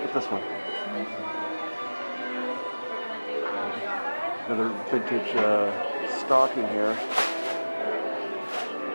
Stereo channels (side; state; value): both; inverted; correlation -1.00